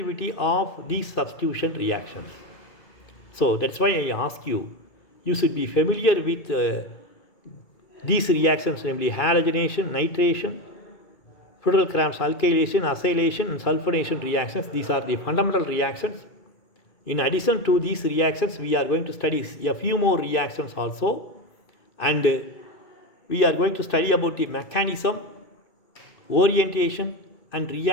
of these substitution reactions. So that's why I ask you, you should be familiar with these reactions, namely halogenation, nitration, Friedel-Crafts alkylation, acylation and sulfonation reactions. These are the fundamental reactions. In addition to these reactions, we are going to study a few more reactions also, and we are going to study about the mechanism, orientation and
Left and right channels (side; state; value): right; late; 2.3 ms